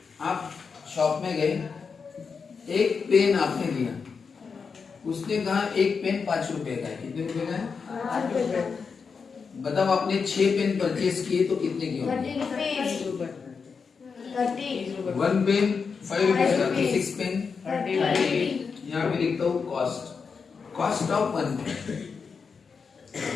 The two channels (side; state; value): right; quieter; 5.5 dB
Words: आप शॉप में गए, एक पेन आपने लिया, उसने कहा एक पेन 5 रुपए का है। कितने रुपए का है? बताओ आपने 6 पेन परचेज किए तो कितने की होंगे? 1 पेन 5 रुपीज का, 6 पेन 30। यहाँ पे लिखता हूँ कॉस्ट ऑफ 1 पेन